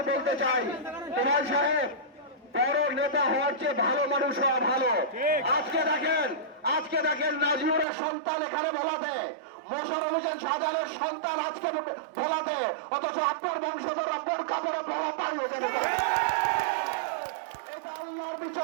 বলতে চাই, তোফায়েল সাহেব বড় নেতা হওয়ার চেয়ে ভালো মানুষ হওয়া ভালো। আজকে দেখেন নাজিউরের সন্তান এখানে ভোলাতে, মোশাররফ হোসেন শাহজাহানের সন্তান আজকে ভোলাতে, অথচ আপনার বংশধররা বোরকা পরে ভোলা পালিয়ে যাবে। এটা আল্লাহর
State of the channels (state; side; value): drops out; left; at 7.9 s